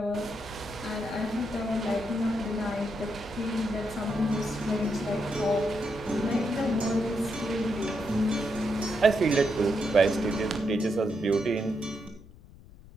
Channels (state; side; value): noise; left; rumble, 20 dB below the sound